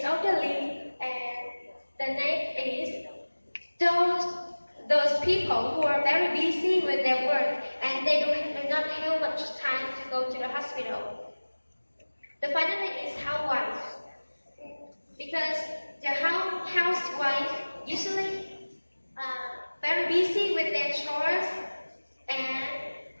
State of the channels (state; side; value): inverted; both; correlation -1.00